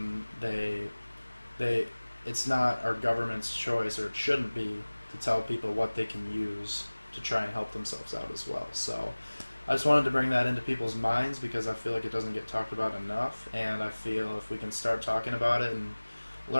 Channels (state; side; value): inverted; both; correlation -1.00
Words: it's not our government's choice, or it shouldn't be, to tell people what they can use to try and help themselves out as well. So I just wanted to bring that into people's minds, because I feel like it doesn't get talked about enough, and I feel if we can start talking about it and